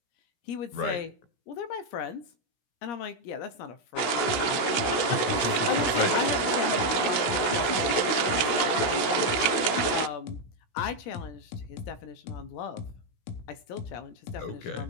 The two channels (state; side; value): late; right; 16 ms